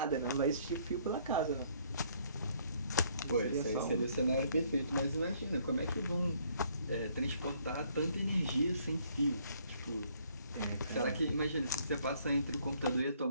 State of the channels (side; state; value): both; inverted; correlation -0.65